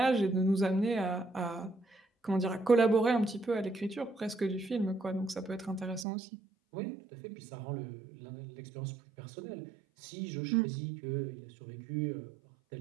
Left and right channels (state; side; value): drops out; left; at 6.1 s